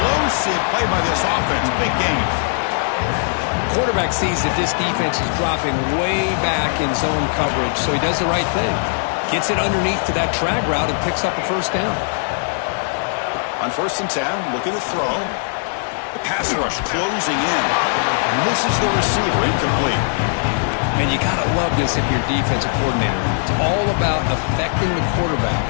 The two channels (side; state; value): right; silent; 64 dB below the other